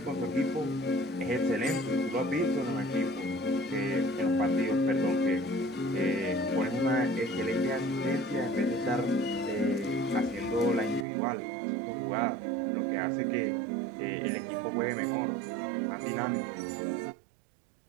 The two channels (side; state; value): left; drops out; at 11.1 s